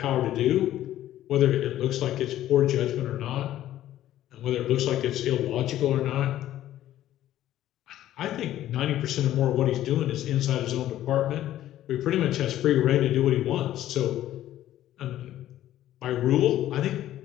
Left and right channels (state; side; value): quieter; right; 13.1 dB